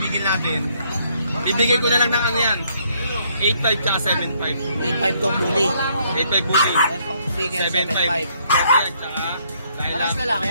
natin, ibigay ko na lang ng ano yan, 8,500 tsaka 7,500. 8,500 tong bully. 8,500 bully. Itong bigel, 7,500. 7,500. Tsaka, dahil Paras lalaki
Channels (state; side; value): inverted; both; correlation -0.69